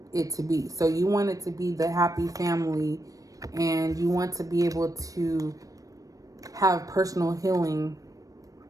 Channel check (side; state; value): left; late; 0.17 ms